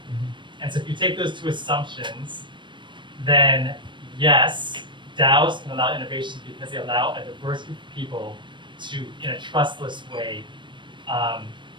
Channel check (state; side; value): late; left; 0.23 ms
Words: And so if you take those two assumptions, then yes, DAOs can allow innovation because they allow a diverse group of people to, in a trustless way,